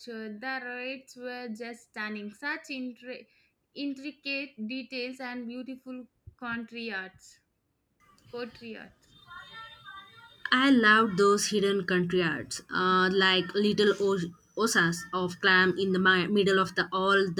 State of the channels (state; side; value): identical; both; correlation 1.00